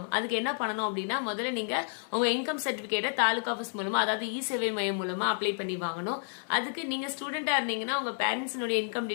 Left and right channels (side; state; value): right; silent; 57 dB below the other